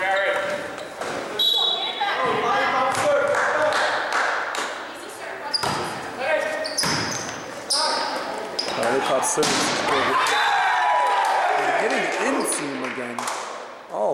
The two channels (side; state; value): both; identical; correlation 1.00